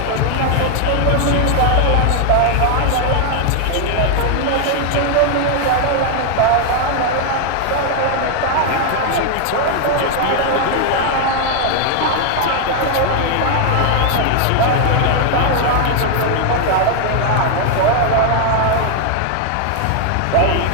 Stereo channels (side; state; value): both; different; correlation 0.00